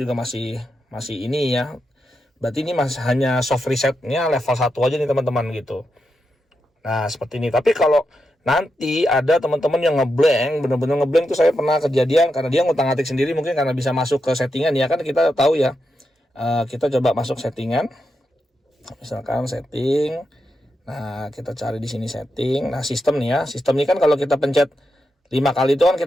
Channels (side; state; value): both; normal; correlation 0.86